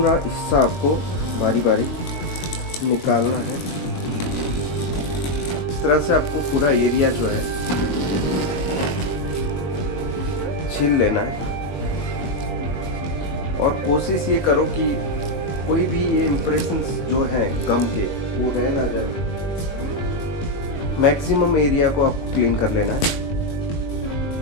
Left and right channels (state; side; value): late; right; 21 ms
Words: हिस्सा आपको बारी बारी निकालना है। इस तरह से आपको पूरा एरिया जो है छील लेना है, और कोशिश ये करो कि कोई भी ये इम्प्रेशंस जो है गम के वो रह ना जाए। मैक्सिमम एरिया को आप क्लीन कर लेना है।